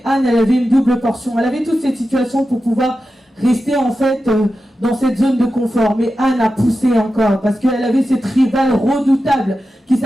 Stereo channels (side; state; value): both; normal; correlation 0.92